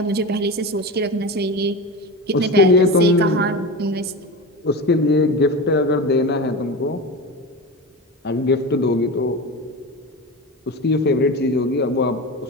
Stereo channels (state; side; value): normal; both; correlation 0.25